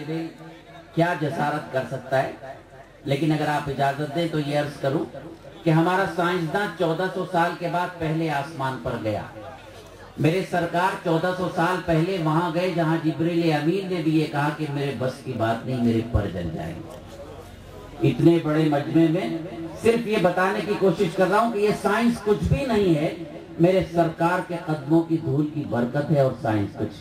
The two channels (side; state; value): both; identical; correlation 1.00